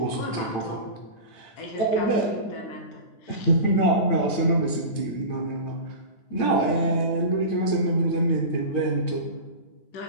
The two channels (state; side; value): late; right; 9.0 ms